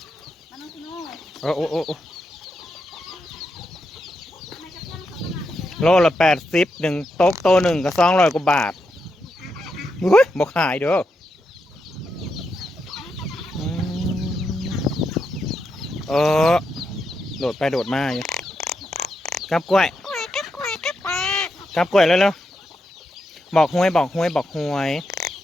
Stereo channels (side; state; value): both; normal; correlation 0.84